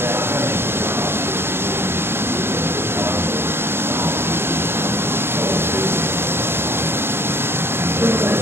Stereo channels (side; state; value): left; late; 0.11 ms